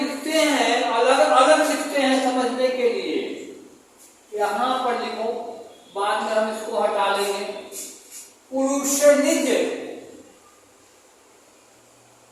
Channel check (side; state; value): both; identical; correlation 1.00